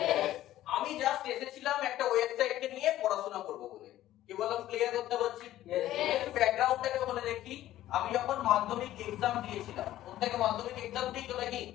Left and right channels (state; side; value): quieter; right; 13.9 dB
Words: আমি জাস্ট এসেছিলাম একটা ওয়েবসাইটকে নিয়ে পড়াশোনা করব বলে, কি বললাম? ক্লিয়ার করতে পারছি? ব্যাকগ্রাউন্ডটাকে বলে দেখি, আমি যখন মাধ্যমিক এক্সাম দিয়েছিলাম, প্রত্যেকে মাধ্যমিক এক্সাম দিয়েছো নাকি?